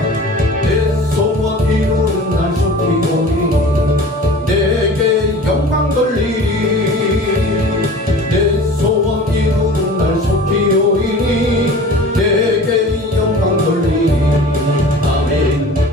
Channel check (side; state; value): both; normal; correlation 0.40